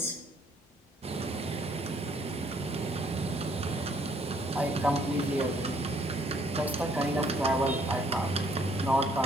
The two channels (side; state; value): both; normal; correlation 0.65